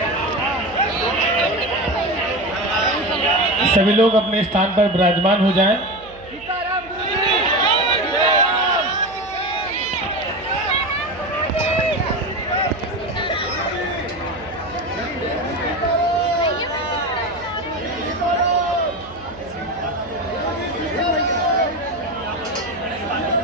सभी लोग अपने स्थान पर विराजमान हो जाएं।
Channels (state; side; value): noise; right; hum, 22 dB below the sound